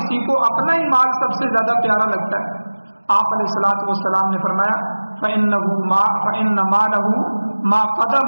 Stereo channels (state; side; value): inverted; both; correlation -1.00